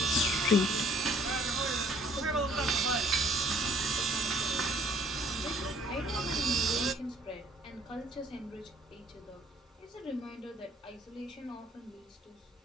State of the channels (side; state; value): both; normal; correlation 0.59